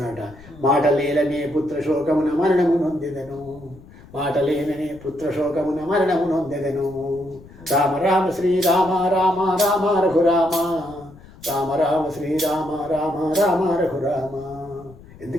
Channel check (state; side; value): noise; left; rumble, 21 dB below the sound